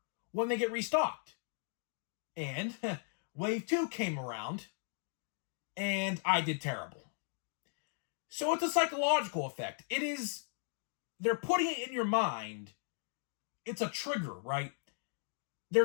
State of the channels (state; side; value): silent; right; 53 dB below the other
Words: when they get restocked. And Wave 2 came around, and I did terrible. So it's a psychological effect. They're putting it in your mind. It's a trigger, right? They're